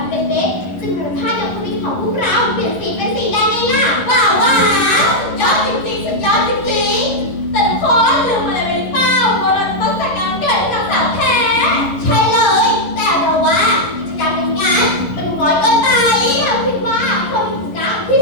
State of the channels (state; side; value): late; right; 11 ms